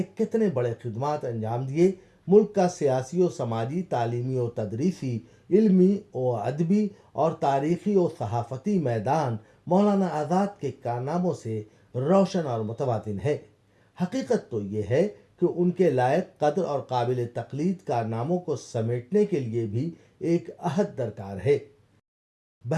کتنے بڑے خدمات انجام دیے۔ ملک کا سیاسی و سماجی، تعلیمی و تدریسی، علمی و ادبی اور تاریخی و صحافتی میدان مولانا آزاد کے کارناموں سے روشن اور متواتر ہے۔ حقیقت تو یہ ہے کہ ان کے لائق قدر اور قابل تقلید کارناموں کو سمیٹنے کے لیے بھی ایک عہد درکار ہے۔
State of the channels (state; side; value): identical; both; correlation 1.00